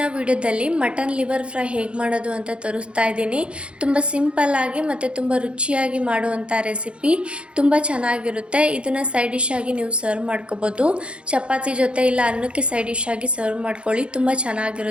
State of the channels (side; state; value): left; late; 0.058 ms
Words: ವಿಡಿಯೋದಲ್ಲಿ ಮಟನ್ ಲಿವರ್ ಫ್ರೈ ಹೇಗೆ ಮಾಡೋದು ಅಂತ ತೋರಿಸ್ತಾ ಇದ್ದೀನಿ. ತುಂಬ ಸಿಂಪಲ್ಲಾಗಿ ಮತ್ತು ತುಂಬ ರುಚಿಯಾಗಿ ಮಾಡುವಂಥ ರೆಸಿಪಿ. ತುಂಬ ಚೆನ್ನಾಗಿರುತ್ತೆ. ಇದನ್ನು ಸೈಡ್ ಡಿಶ್ ಆಗಿ ನೀವು ಸರ್ವ್ ಮಾಡ್ಕೋಬೋದು. ಚಪಾತಿ ಜೊತೆ ಇಲ್ಲ ಅನ್ನಕ್ಕೆ ಸೈಡ್ ಡಿಶ್ ಆಗಿ ಸರ್ವ್ ಮಾಡ್ಕೊಳ್ಳಿ. ತುಂಬ